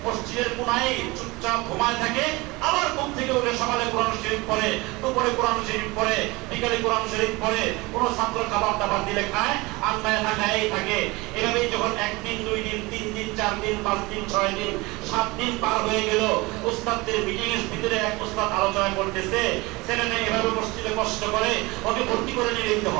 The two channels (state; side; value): quieter; left; 23.2 dB